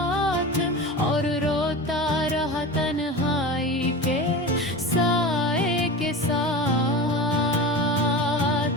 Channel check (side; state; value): both; normal; correlation 0.29